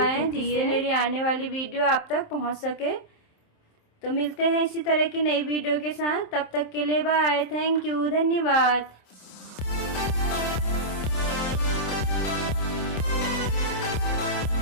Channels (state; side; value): late; right; 27 ms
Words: जिससे मेरी आने वाली वीडियो आप तक पहुंच सके। तो मिलते हैं इसी तरह की नई वीडियो के साथ, तब तक के लिए बाय, थैंक यू, धन्यवाद।